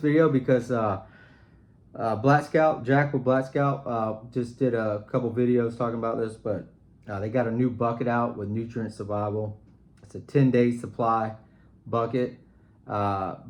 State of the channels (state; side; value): identical; both; correlation 1.00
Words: because Black Scout, Jack with Black Scout, just did a couple videos talking about this, but they got a new bucket out with Nutrient Survival. It's a 10-day supply bucket,